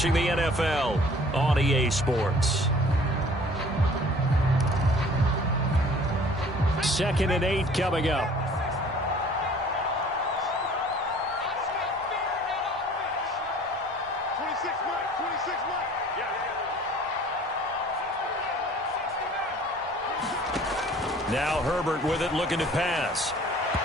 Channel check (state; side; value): normal; both; correlation 0.51